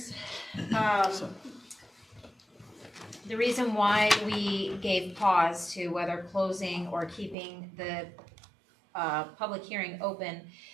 The reason why we gave pause to whether closing or keeping the public hearing open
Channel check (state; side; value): drops out; left; at 7.4 s